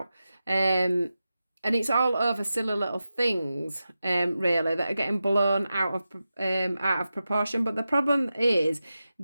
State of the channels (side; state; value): both; inverted; correlation -0.92